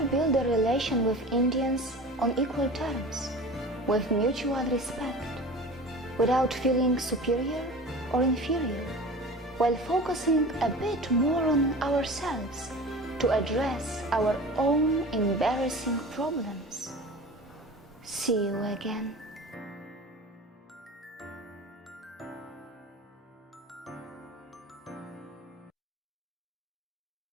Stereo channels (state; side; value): normal; both; correlation 0.36